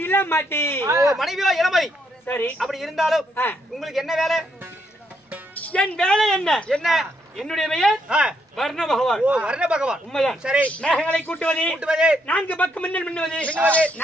இல்ல மாட்டி ஓ மனைவியோ இளமதி சரி அப்படி இருந்தாலும் உங்களுக்கு என்ன வேலை என் வேலை என்ன என்ன என்னுடைய பெயர் வர்ண பகவான் ஓ வர்ண பகவான் உண்மைதான் சரி மேகங்களை கூட்டுவது கூட்டுவது நான்கு பக்கம் மின்னல் மின்னுவது மின்னுவது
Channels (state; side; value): normal; both; correlation 0.76